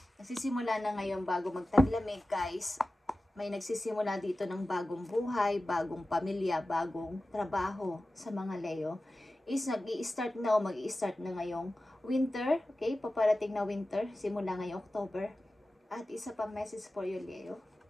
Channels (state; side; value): normal; both; correlation 0.95